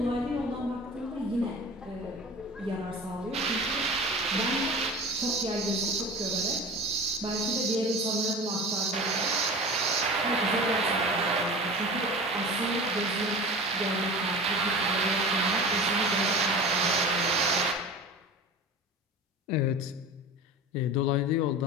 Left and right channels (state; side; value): normal; both; correlation 0.35